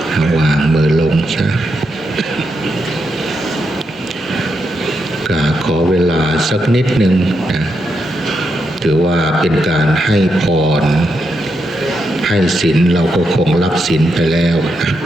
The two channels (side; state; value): both; normal; correlation 0.83